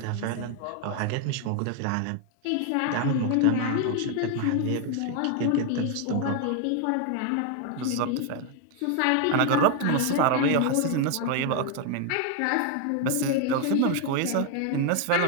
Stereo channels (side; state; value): both; different; correlation 0.01